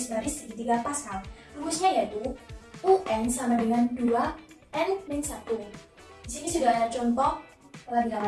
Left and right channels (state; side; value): identical; both; correlation 1.00